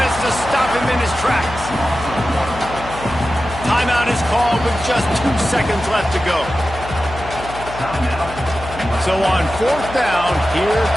Seconds left to go. So on fourth down, here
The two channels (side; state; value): left; noise; hum, 13 dB below the sound